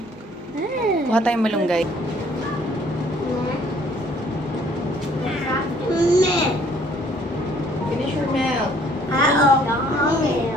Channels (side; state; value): both; normal; correlation 0.60